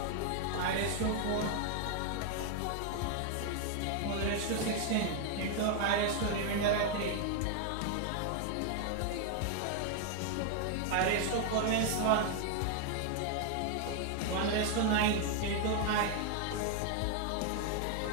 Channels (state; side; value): different; both; correlation 0.00